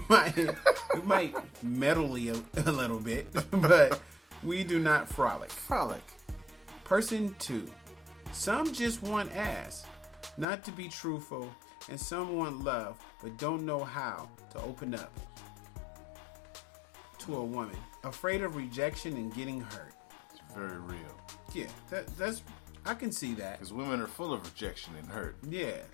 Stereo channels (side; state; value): right; drops out; at 10.5 s